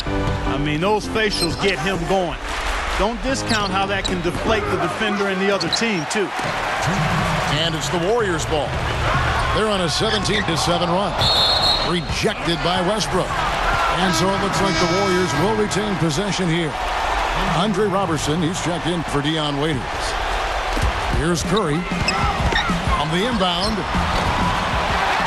I mean, those facials get him going. Don't discount how that can deflate the defender and the other team, too. And it's the Warriors' ball. They're on a 17-7 run. Rejected by Westbrook. And so it looks like the Warriors will retain possession here. Andre Robertson, he's checked in for Dion Waiters. Here's Curry on the inbound.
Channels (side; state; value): both; identical; correlation 1.00